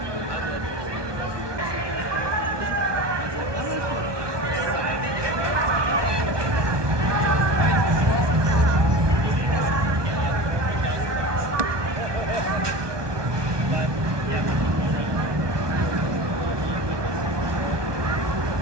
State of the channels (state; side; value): late; left; 1.2 ms